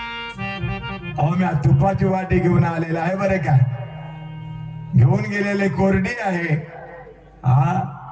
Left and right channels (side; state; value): both; identical; correlation 1.00